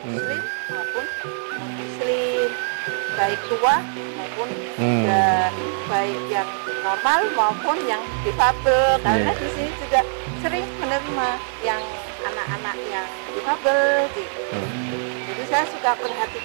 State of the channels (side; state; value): left; silent; digital silence